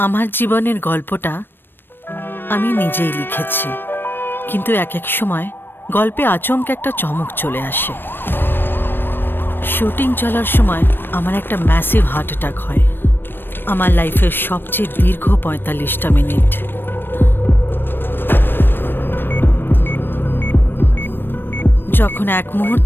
জীবনের গল্পটা আমি নিজেই লিখেছি, কিন্তু এক এক সময় গল্পে আচমকা একটা চমক চলে আসে। শুটিং চলার সময় আমার একটা ম্যাসিভ হার্ট অ্যাটাক হয়। আমার লাইফের সবচেয়ে দীর্ঘ ৪৫টা মিনিট। যখন এক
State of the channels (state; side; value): late; right; 0.097 ms